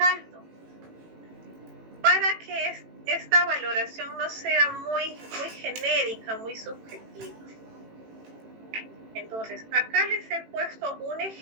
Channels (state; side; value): late; left; 18 ms